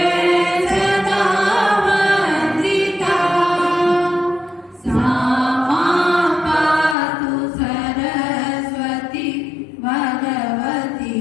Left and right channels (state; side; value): drops out; right; at 7.0 s